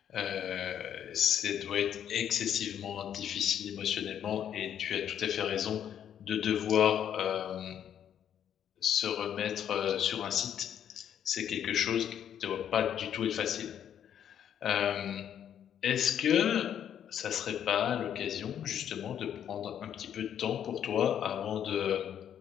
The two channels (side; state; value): right; quieter; 9.5 dB